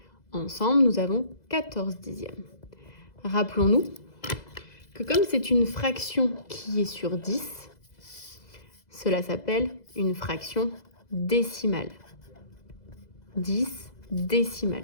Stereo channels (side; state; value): right; late; 2.0 ms